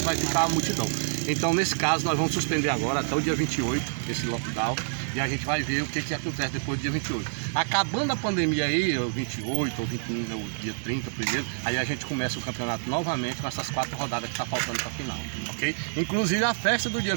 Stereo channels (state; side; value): silent; left; digital silence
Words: vai ficar a multidão. Então nesse caso nós vamos suspender agora até o dia 28, esse lockdown, e a gente vai ver o que acontece depois do dia 28. Acabando a pandemia aí, o 28 ou 21, o dia 30 primeiro, aí a gente começa o campeonato novamente com essas 4 rodadas que tá faltando para final, ok? Inclusive a festa do dia